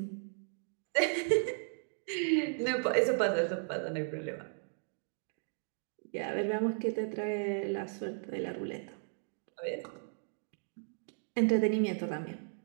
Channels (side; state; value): left; silent; digital silence